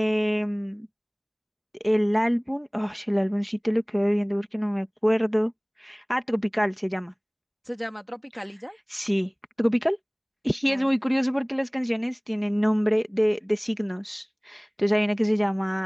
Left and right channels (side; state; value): both; identical; correlation 1.00